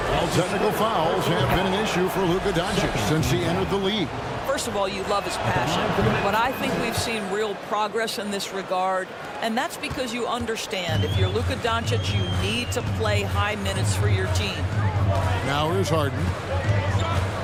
technical fouls have been an issue for Luka Doncic since he entered the league. First of all, you love his passion, but I think we've seen real progress in this regard, and that's because you understand if you're Luka Doncic, you need to play high minutes for your team. Now here's Harden.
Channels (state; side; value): identical; both; correlation 1.00